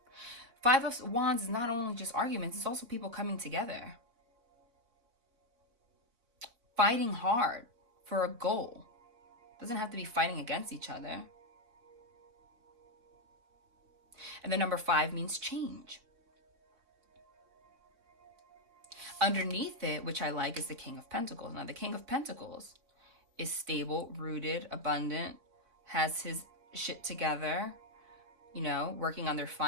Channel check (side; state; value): left; late; 4.3 ms